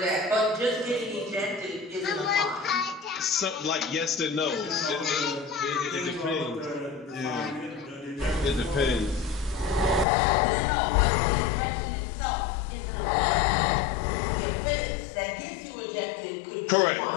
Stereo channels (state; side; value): drops out; right; at 10.1 s